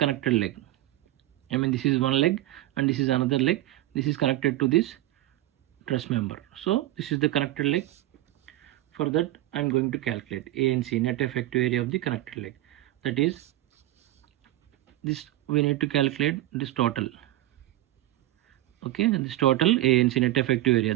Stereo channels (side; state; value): left; quieter; 15.8 dB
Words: leg. This is one leg and this is another leg. This is connected to this truss member. So this is the connected leg. For that I am going to calculate ANC, net effective area of the connected leg. That is, this we need to calculate this total. Okay, this total ANC, net effective area,